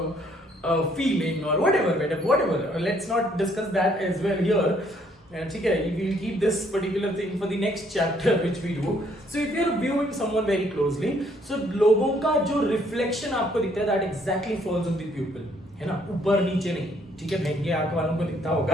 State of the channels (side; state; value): both; normal; correlation 0.66